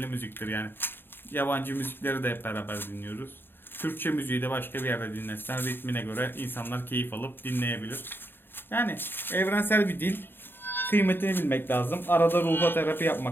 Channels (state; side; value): late; right; 0.099 ms